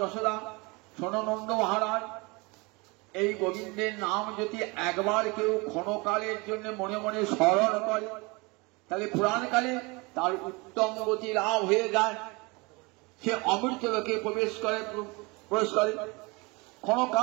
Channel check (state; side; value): quieter; left; 26.7 dB